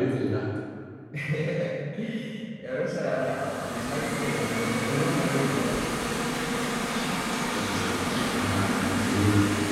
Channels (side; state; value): both; identical; correlation 1.00